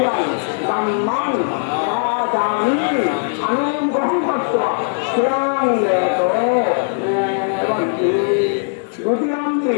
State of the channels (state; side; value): silent; right; digital silence